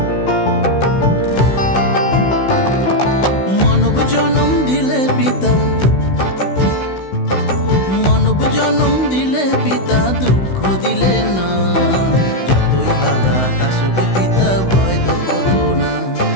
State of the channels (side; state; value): right; late; 16 ms